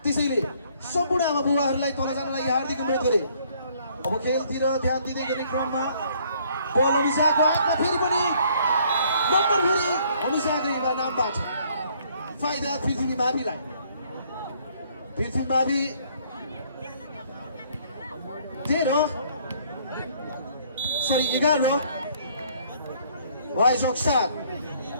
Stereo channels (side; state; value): both; inverted; correlation -0.62